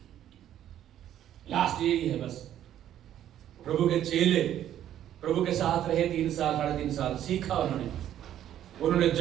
लास्ट यही है बस। प्रभु के चेले प्रभु के साथ रहे 3 साल 3.5 साल, सीखा उन्होंने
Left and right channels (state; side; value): quieter; left; 11.3 dB